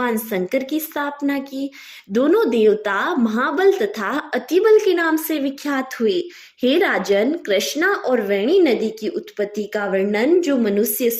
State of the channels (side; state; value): both; identical; correlation 1.00